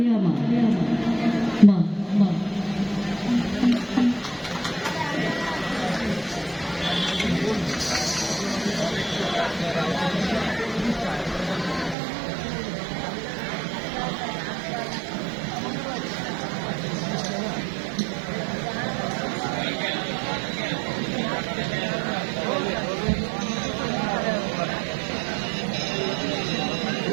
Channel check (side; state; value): left; drops out; at 12.0 s